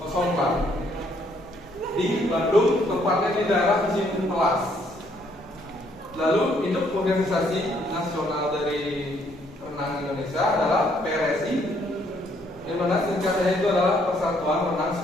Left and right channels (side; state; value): both; normal; correlation 0.68